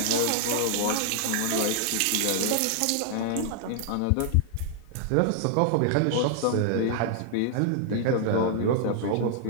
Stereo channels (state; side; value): different; both; correlation -0.01